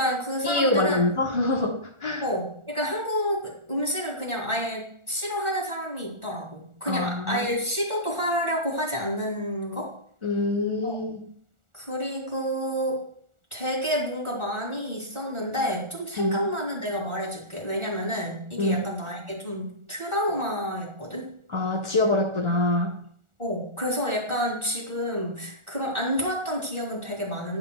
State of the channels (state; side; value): late; left; 1.4 ms